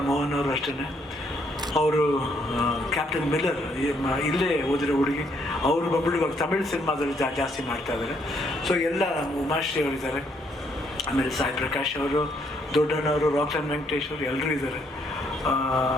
ಮೋಹನ್ ಅವರು ಅಷ್ಟೇ, ಅವರು ಕ್ಯಾಪ್ಟನ್ ಮಿಲ್ಲರ್ ಇಲ್ಲೇ ಓದಿರೋ ಹುಡುಗಿ, ಅವರು ಬಂದ್ಬಿಟ್ಟು ಇವಾಗ ತಮಿಳ್ ಸಿನಿಮಾದಲ್ಲಿ ಜಾಸ್ತಿ ಮಾಡ್ತಾ ಇದ್ದಾರೆ. ಸೊ ಎಲ್ಲ ಉಮಾಶ್ರೀ ಅವರಿದ್ದಾರೆ, ಆಮೇಲೆ ಸಾಯಿ ಪ್ರಕಾಶ್ ಅವರು, ದೊಡ್ಡಣ್ಣವರು, ರಾಕ್ಲೈನ್ ವೆಂಕಟೇಶ್ ಅವರು ಎಲ್ಲರೂ ಇದ್ದಾರೆ.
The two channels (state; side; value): normal; both; correlation 0.70